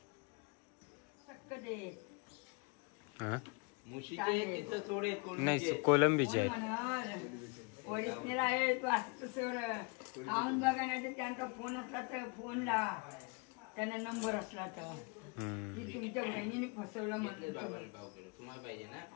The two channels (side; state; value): right; quieter; 30.6 dB